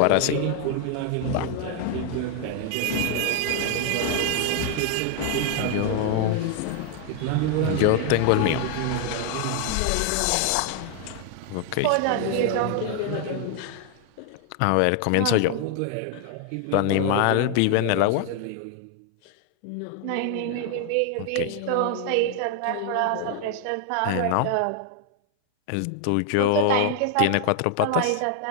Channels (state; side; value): different; both; correlation 0.00